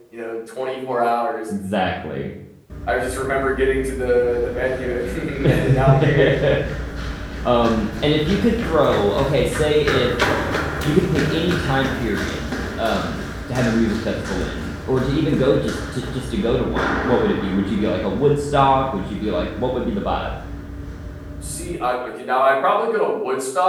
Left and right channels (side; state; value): both; identical; correlation 1.00